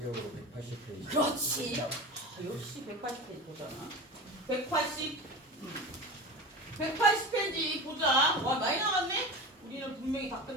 180페이지. 그렇지. 역시 180페이지 보잖아. 180페이지 보자. 와, 많이 나갔네? 우리는 분명히 다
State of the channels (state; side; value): normal; both; correlation 0.29